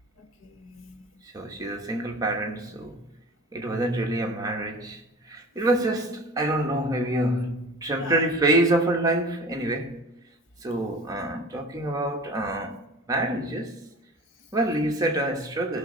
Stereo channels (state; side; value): normal; both; correlation 0.39